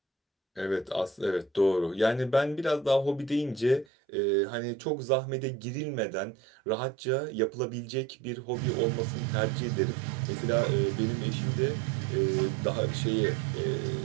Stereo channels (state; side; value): drops out; left; at 3.9 s